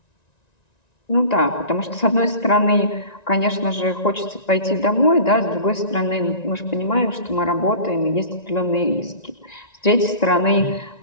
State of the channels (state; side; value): late; right; 1.9 ms